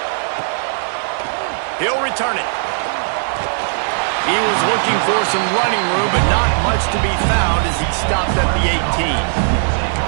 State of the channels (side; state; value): left; silent; digital silence